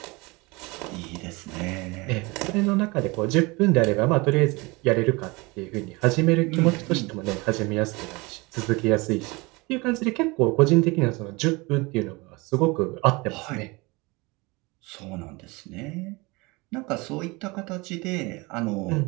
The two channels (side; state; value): left; quieter; 25.0 dB